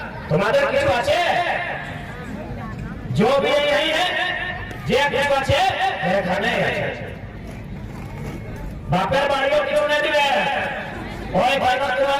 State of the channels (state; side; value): identical; both; correlation 1.00